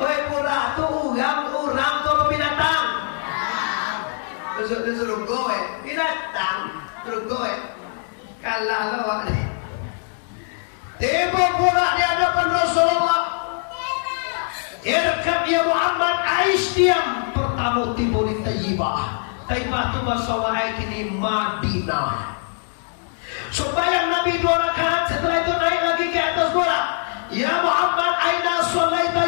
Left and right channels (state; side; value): silent; right; 61 dB below the other